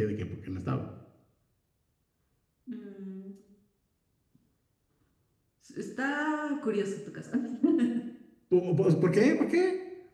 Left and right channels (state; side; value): identical; both; correlation 1.00